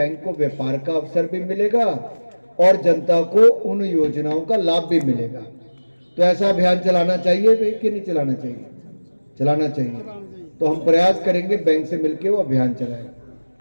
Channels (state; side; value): inverted; both; correlation -1.00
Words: को व्यापार का अवसर भी मिलेगा और जनता को उन योजनाओं का लाभ भी मिलेगा। तो ऐसा अभियान चलाना चाहिए कि नहीं चलाना चाहिए? चलाना चाहिए। तो हम प्रयास करेंगे बैंक से मिलकर वो अभियान चलाएं।